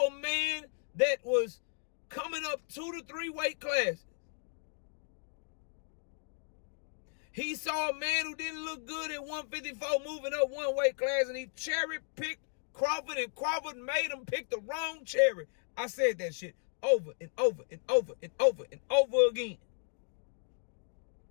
a man that was coming up 2 to 3 weight classes. He saw a man who didn't look good at 154 moving up 1 weight class, and he cherry-picked Crawford, and Crawford made him pick the wrong cherry. I said that shit over and over and over and over and over again.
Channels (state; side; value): silent; right; 55 dB below the other